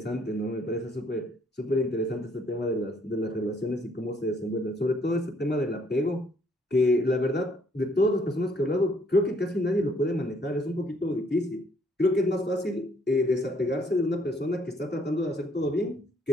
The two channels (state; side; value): normal; both; correlation 0.66